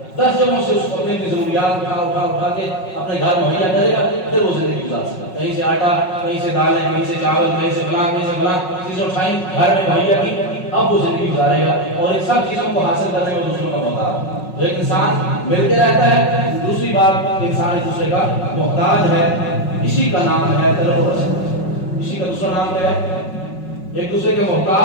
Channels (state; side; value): late; right; 5.4 ms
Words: 10 جگہوں سے اس کو اپنی ضروریات اٹھا کے اپنے گھر مہیا کرے گا، پھر وہ زندگی گزار سکتا ہے۔ کہیں سے آٹا، کہیں سے دالیں، کہیں سے چاول، کہیں سے فلاں چیزیں اٹھائیں، گھر میں مہیا کی، اب وہ زندگی گزارے گا۔ اور ان سب چیزوں کو حاصل کرنے میں دوسروں کا محتاج ہے۔ تو ایک انسان مل کے رہتا ہے، دوسری بات انسان ایک دوسرے کا محتاج ہے۔ اسی کا نام ہے طلب و رسد۔ اسی کا دوسرا نام کیا ہے؟ ایک دوسرے کے